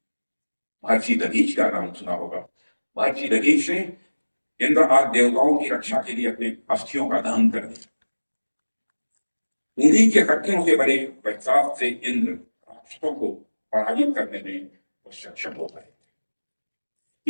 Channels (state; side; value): inverted; both; correlation -1.00